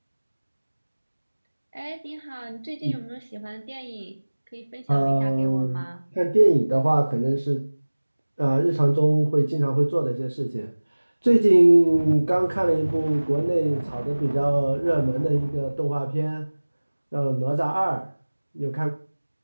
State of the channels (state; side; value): inverted; both; correlation -1.00